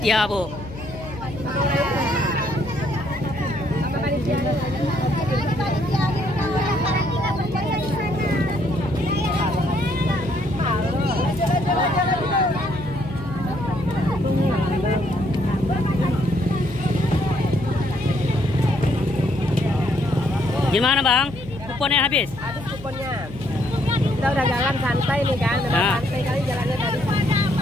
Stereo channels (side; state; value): left; noise; hum, 14 dB below the sound